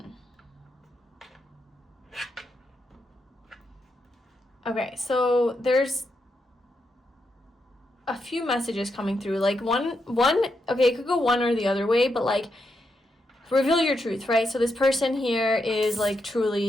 Okay, so there's a few messages coming through. Like one, okay, it could go one or the other way, but like, reveal your truth, right? So this person here is like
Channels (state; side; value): normal; both; correlation 0.83